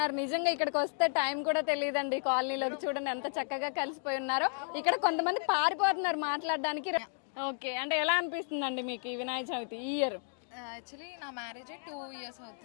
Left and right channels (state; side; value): silent; right; digital silence